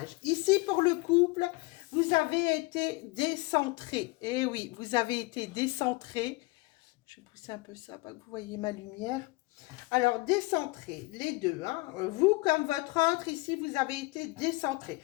Ici, pour le couple, vous avez été décentré. Eh oui, vous avez été décentré. Je vais pousser un peu ça, pas que vous voyez ma lumière. Alors, décentré, les deux. Hein. Vous, comme votre autre, ici, vous avez été décentré.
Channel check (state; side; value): quieter; right; 23.6 dB